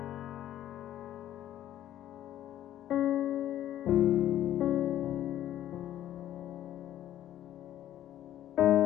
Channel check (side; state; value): right; quieter; 12.2 dB